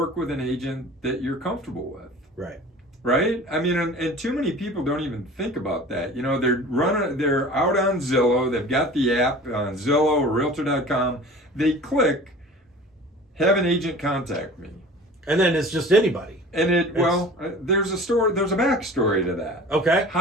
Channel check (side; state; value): both; normal; correlation 0.41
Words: with an agent that you're comfortable with. Right. Right? I mean, and too many people don't even think about that. They're out on Zillow. They've got the app on Zillow or Realtor.com. They click, have an agent contact me. And then it's just anybody. And there's a backstory to that. Okay.